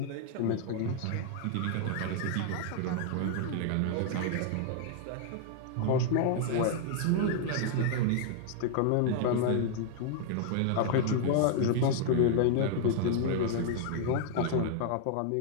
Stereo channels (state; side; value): different; both; correlation -0.01